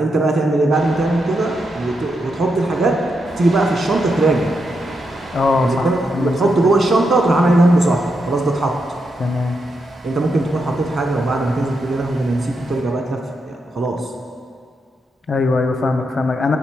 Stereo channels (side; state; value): both; normal; correlation 0.83